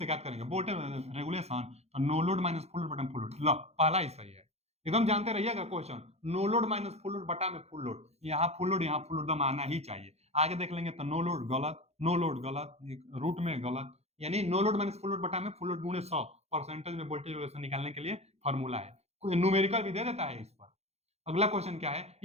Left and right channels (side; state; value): left; late; 0.31 ms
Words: ज्ञात करेंगे। वोल्टेज रेगुलेशन, तो no load minus full load बटा फुल लोड, लो पहला ही सही है, एकदम जानते रहिएगा question, no load minus full load बटा में फुल लोड, यहाँ फुल लोड यहाँ फुल लोड दम आना ही चाहिए। आगे देख लेंगे तो नो लोड गलत, नो लोड गलत, रूट में गलत, यानी no load minus full load बटा में फुल लोड गुणे 100 परसेंटेज में वोल्टेज रेगुलेशन निकालने के लिए फॉर्मूला है, कोई न्यूमेरिकल भी दे देता है इस पर। अगला क्वेश्चन क्या है,